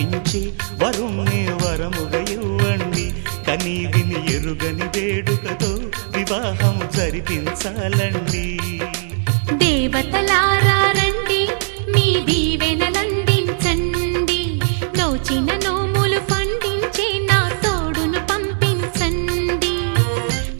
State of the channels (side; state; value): left; silent; digital silence